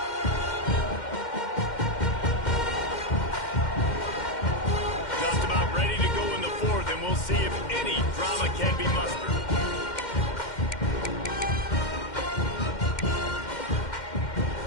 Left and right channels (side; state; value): right; late; 2.1 ms